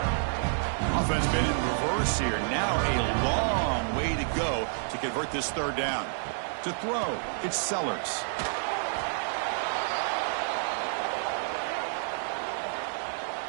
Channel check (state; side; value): silent; left; digital silence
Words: Offense been in reverse here. Now a long way to go to convert this third down. To throw, it's Sellers.